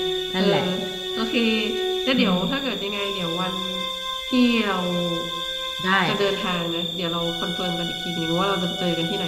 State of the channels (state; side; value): identical; both; correlation 1.00